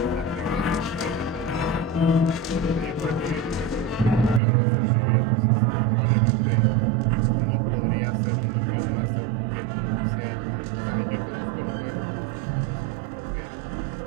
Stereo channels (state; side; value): drops out; left; at 4.4 s